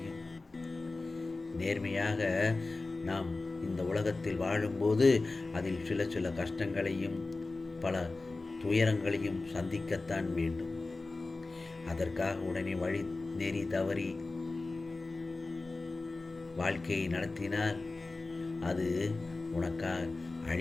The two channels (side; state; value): right; quieter; 3.4 dB